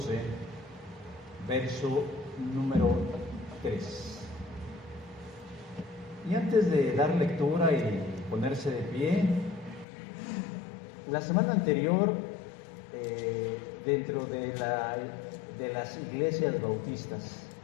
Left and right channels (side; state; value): right; drops out; at 9.9 s